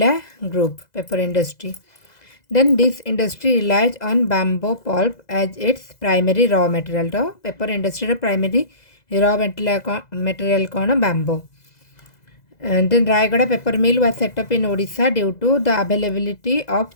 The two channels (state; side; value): late; right; 2.0 ms